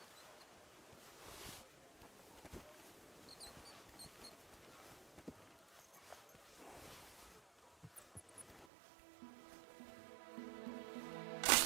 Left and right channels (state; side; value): drops out; left; at 8.7 s